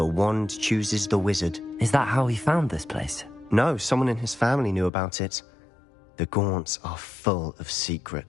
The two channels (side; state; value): right; drops out; at 4.9 s